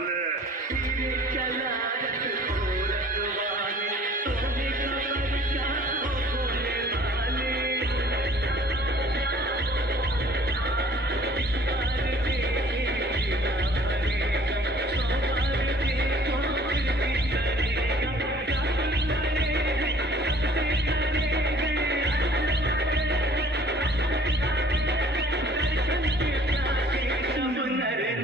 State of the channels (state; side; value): normal; both; correlation 0.53